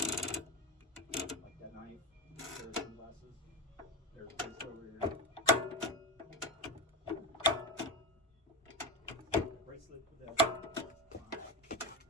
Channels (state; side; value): normal; both; correlation 0.18